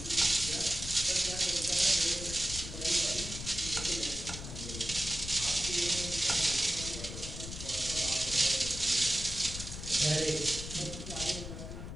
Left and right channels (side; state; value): left; noise; rumble, 8 dB below the sound